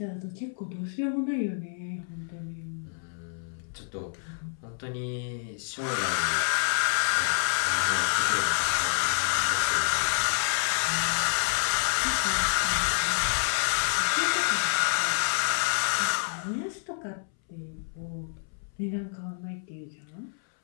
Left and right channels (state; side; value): silent; right; 59 dB below the other